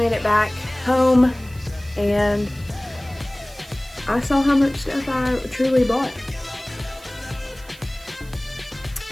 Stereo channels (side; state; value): right; noise; hiss, 23 dB below the sound